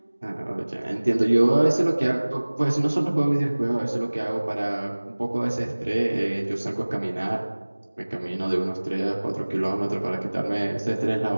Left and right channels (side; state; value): both; inverted; correlation -1.00